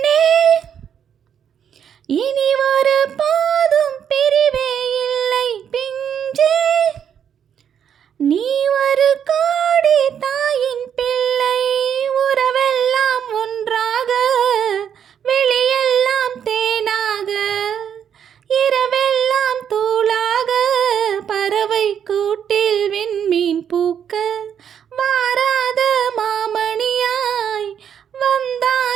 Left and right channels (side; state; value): left; quieter; 8.5 dB